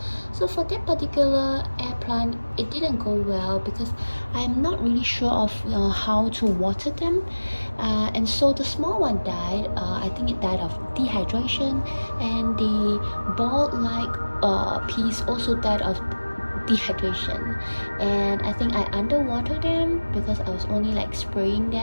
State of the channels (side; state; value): both; inverted; correlation -1.00